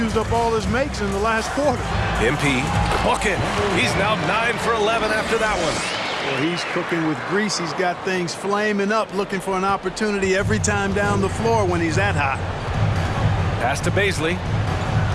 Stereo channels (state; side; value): identical; both; correlation 1.00